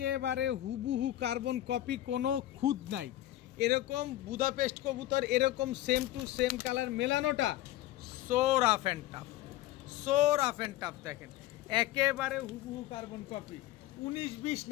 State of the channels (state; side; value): quieter; right; 14.8 dB